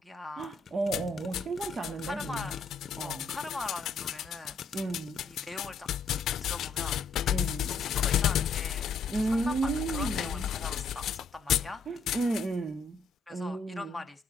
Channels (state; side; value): quieter; right; 3.8 dB